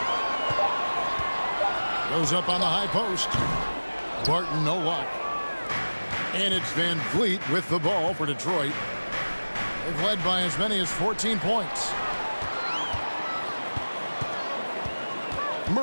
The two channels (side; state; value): both; inverted; correlation -1.00